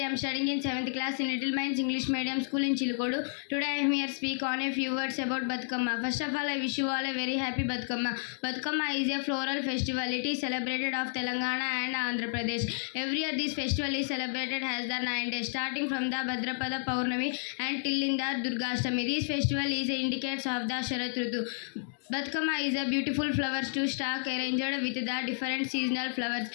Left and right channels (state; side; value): silent; right; digital silence